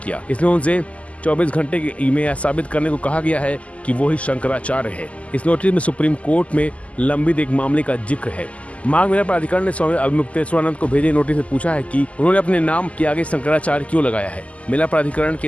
किया। इसमें उनसे 24 घंटे में यह साबित करने को कहा गया है कि वो ही शंकराचार्य है। इस नोटिस में सुप्रीम कोर्ट में लंबित एक मामले का जिक्र है। माघ मेला प्राधिकरण ने स्वामी अवमुक्तेश्वरानंद को भेजे नोटिस में पूछा है कि उन्होंने अपने नाम के आगे शंकराचार्य क्यों लगाया है। मेला प्राधिकरण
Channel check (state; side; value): late; right; 0.066 ms